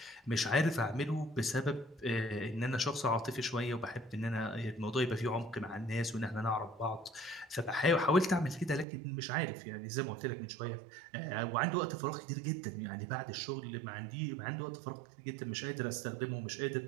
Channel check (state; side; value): drops out; left; at 8.8 s